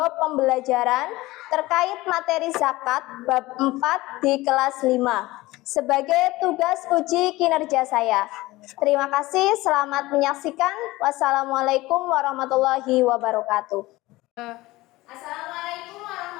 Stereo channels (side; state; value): right; quieter; 19.4 dB